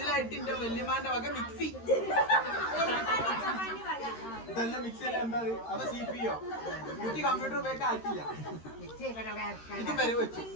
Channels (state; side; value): late; right; 13 ms